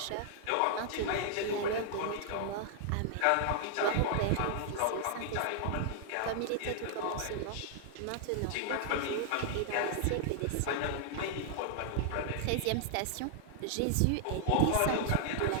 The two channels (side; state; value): both; different; correlation 0.00